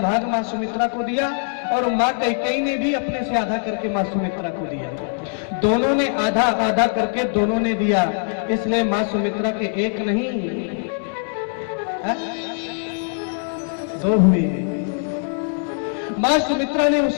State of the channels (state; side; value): silent; right; 63 dB below the other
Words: मां सुमित्रा को दिया और मां कैकेयी ने भी अपने से आधा करके मां सुमित्रा को दिया। दोनों ने आधा आधा करके दोनों ने दिया, इसलिए मां सुमित्रा के एक नहीं 2 हुए। मां सुमित्रा ने